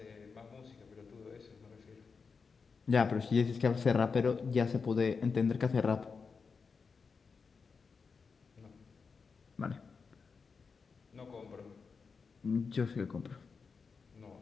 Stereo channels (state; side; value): quieter; right; 5.2 dB